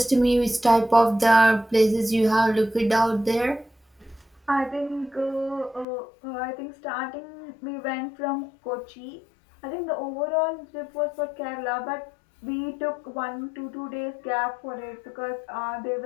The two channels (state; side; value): drops out; right; at 5.9 s